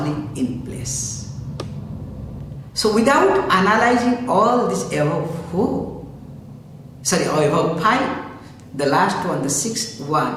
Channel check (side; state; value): both; identical; correlation 1.00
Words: in place. So without analyzing all this above 5, the last one, the 6th